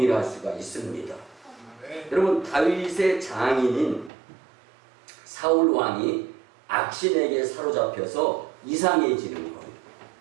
수가 있습니다. 여러분, 다윗의 장인인 사울 왕이 악신에게 사로잡혀서 이상해지는 거예요.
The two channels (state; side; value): drops out; left; at 4.1 s